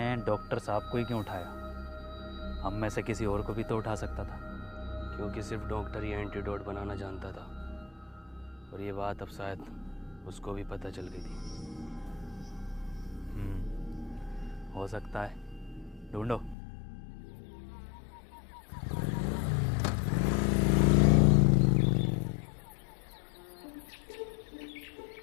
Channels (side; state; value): right; drops out; at 16.6 s